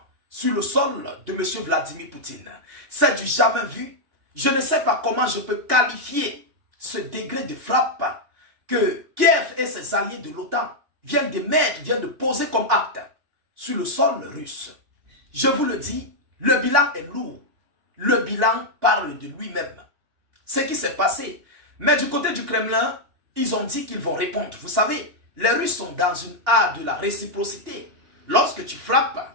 sur le sol de M. Vladimir Poutine. C'est du jamais vu. Je ne sais pas comment je peux qualifier ce degré de frappe que Kiev et ses alliés de l'OTAN viennent de poser comme acte sur le sol russe. Je vous le dis, le bilan est lourd. Le bilan parle de lui-même. Ce qui s'est passé. Mais du côté du Kremlin, ils ont dit qu'ils vont répondre. Vous savez, les Russes sont dans une art de la réciprocité. Lorsque tu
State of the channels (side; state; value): left; late; 2.9 ms